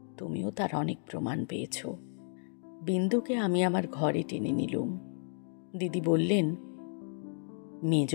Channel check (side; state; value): right; silent; digital silence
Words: তুমিও তার অনেক প্রমাণ পেয়েছ। বিন্দুকে আমি আমার ঘরে টেনে নিলুম। দিদি বললেন, মেজ